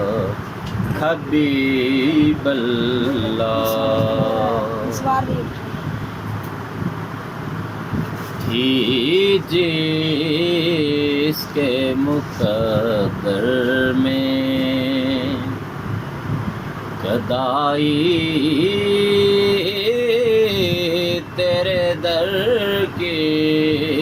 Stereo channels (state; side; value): identical; both; correlation 1.00